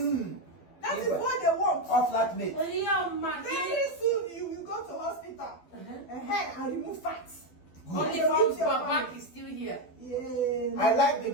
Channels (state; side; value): late; right; 12 ms